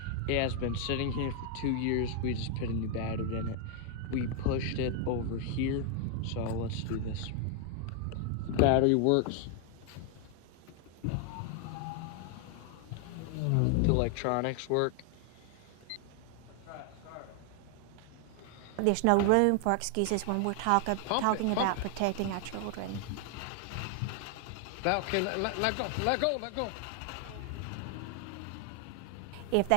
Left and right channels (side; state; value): both; different; correlation 0.00